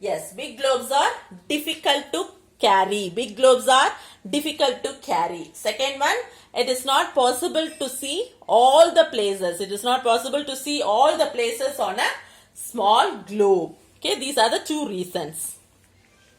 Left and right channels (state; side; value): identical; both; correlation 1.00